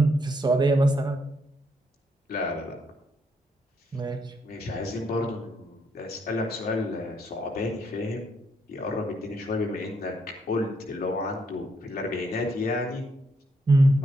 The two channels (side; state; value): both; normal; correlation 0.75